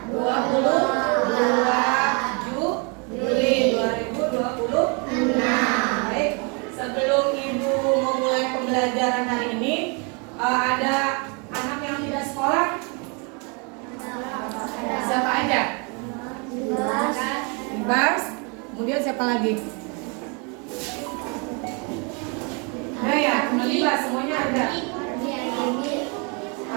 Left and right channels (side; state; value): left; quieter; 33.8 dB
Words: 22 Juli 2026. Baik, sebelum Ibu memulai pembelajaran hari ini, ada anak yang tidak sekolah? Siapa aja? Ibas. Kemudian siapa lagi? Nah ya, Ibas, semuanya ada.